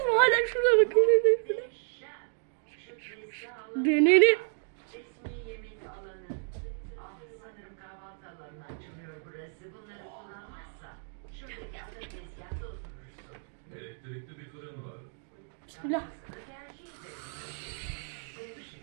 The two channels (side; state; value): left; silent; 57 dB below the other